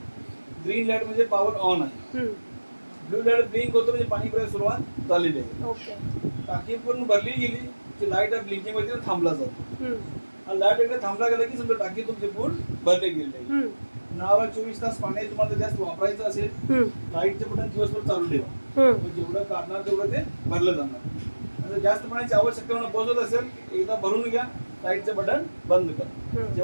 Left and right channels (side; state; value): both; inverted; correlation -1.00